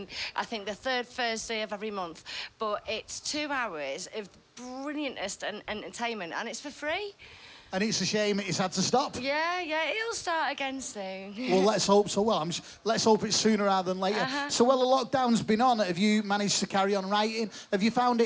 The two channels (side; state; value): both; identical; correlation 1.00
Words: think, the 3rd Thursday of every month. But it's 2 hours of brilliantest entertainment, and it's for free. And it's a shame it's had to stop. Yeah, it'll start again soon. Well, let's hope so. Well, let's hope it's sooner rather than later. So, well, the lockdown's been on. Have you managed to carry on writing? Have you found